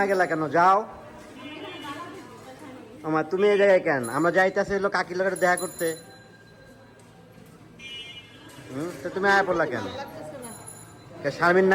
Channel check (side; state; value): both; identical; correlation 1.00